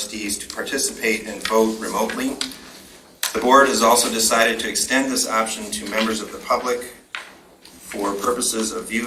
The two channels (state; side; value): identical; both; correlation 1.00